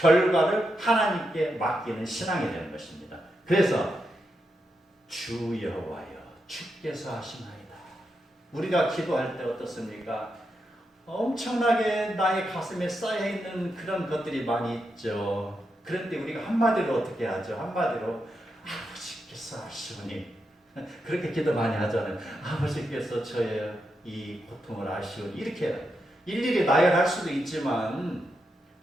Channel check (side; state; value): both; normal; correlation 0.85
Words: 하나님께 맡기는 신앙이 되는 것입니다. 그래서 주 여호와여 주께서 하시나이다. 우리가 기도할 때 어떻습니까? 엄청나게 나의 가슴에 쌓여있는 그런 것들이 많이 있죠. 그런데 우리가 한마디로 어떻게 하죠? 한마디로 아버지께서 아시오니 그렇게 기도 많이 하잖아요. 아버지께서 저의 이 고통을 아시오니 이렇게 일일이 나열할 수도 있지만